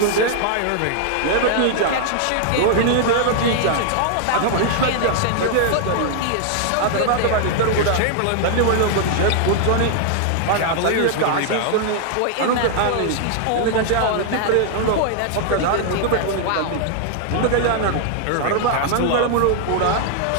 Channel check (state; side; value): different; both; correlation -0.01